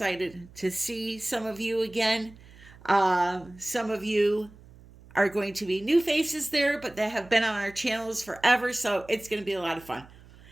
to see some of you again. Some of you are going to be new faces there, but that have been on our channels forever, so it's going to be a lot of fun.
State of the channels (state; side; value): noise; right; hum, 22 dB below the sound